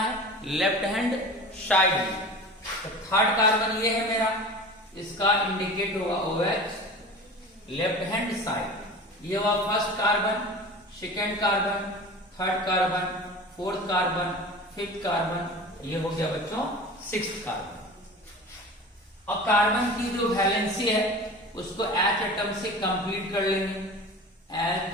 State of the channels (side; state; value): both; normal; correlation 0.36